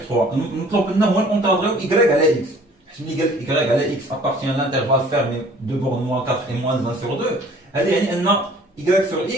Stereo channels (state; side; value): normal; both; correlation 0.52